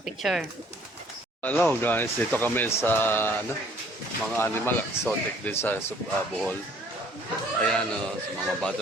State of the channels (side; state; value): both; normal; correlation 0.58